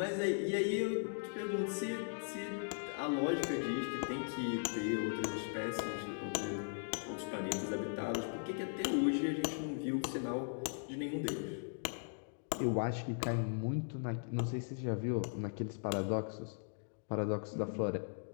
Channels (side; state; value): right; silent; digital silence